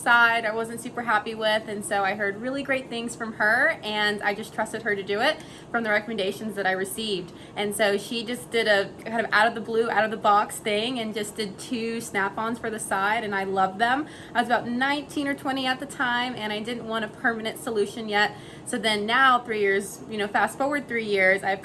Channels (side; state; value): both; identical; correlation 1.00